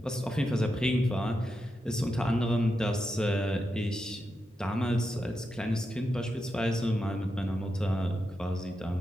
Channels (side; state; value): both; normal; correlation 0.87